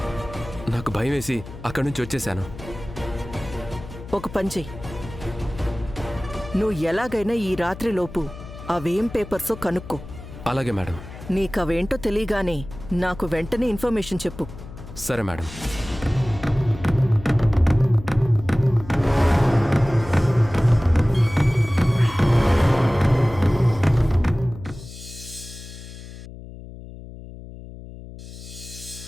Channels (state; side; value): noise; left; hum, 14 dB below the sound